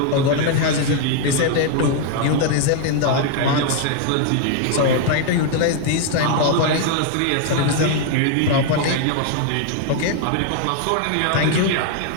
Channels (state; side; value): different; both; correlation 0.00